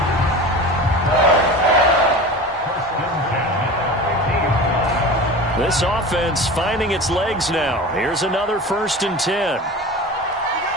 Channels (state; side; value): normal; both; correlation 0.33